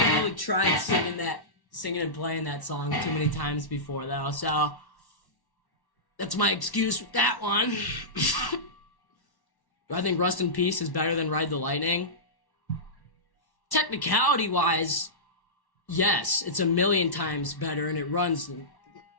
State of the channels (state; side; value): late; right; 1.1 ms